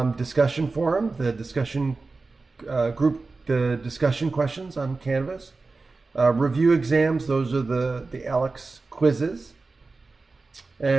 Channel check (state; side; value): quieter; left; 3.8 dB